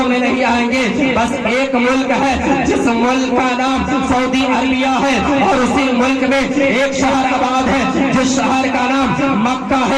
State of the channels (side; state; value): both; identical; correlation 1.00